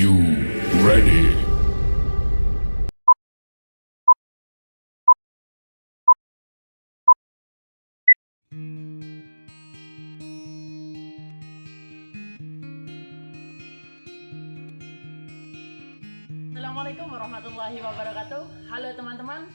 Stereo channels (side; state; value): both; inverted; correlation -1.00